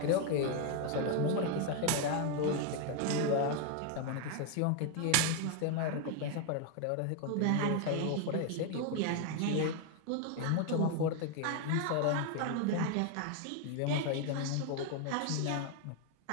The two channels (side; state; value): both; different; correlation 0.01